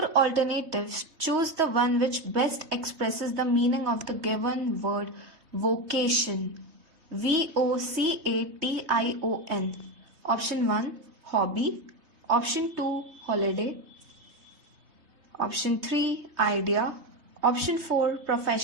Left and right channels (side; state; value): left; late; 3.2 ms